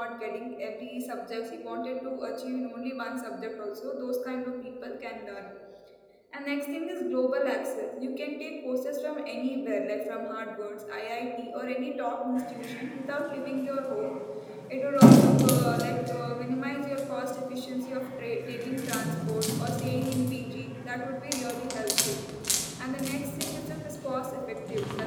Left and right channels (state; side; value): identical; both; correlation 1.00